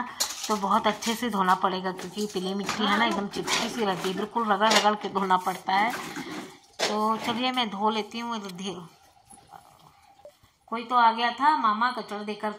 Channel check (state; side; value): identical; both; correlation 1.00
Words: तो बहुत अच्छे से धोना पड़ेगा, क्योंकि पीली मिट्टी है ना एकदम चिपकी सी रहती है, बिल्कुल रगड़ रगड़ के धोना पड़ता है। तो चलिए मैं धो लेती हूँ इधर। कोई तो आ गया था, मामा कचड़ा दे कर